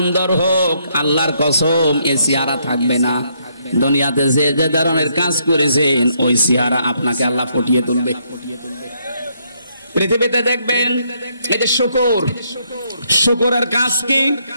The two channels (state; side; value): inverted; both; correlation -0.73